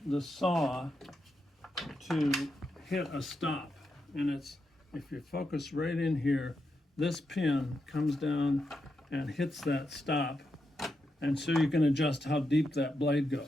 saw to hit a stop. And it's, if you focus right in here, this pin comes down and hits that stop, and so you can adjust how deep that blade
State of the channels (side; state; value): both; normal; correlation 0.85